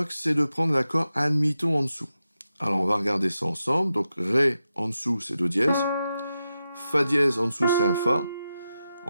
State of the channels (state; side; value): inverted; both; correlation -0.89